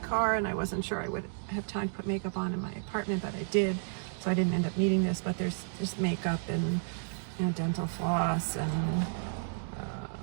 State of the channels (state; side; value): silent; left; digital silence